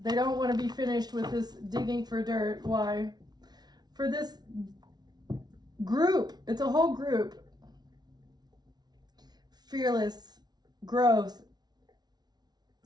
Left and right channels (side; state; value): left; late; 0.19 ms